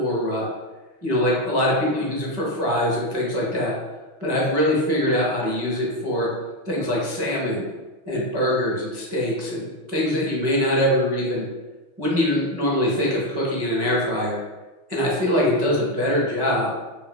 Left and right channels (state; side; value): late; left; 6.1 ms